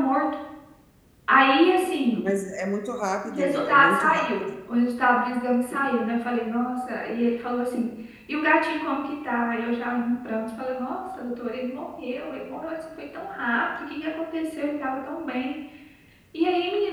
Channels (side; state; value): both; identical; correlation 1.00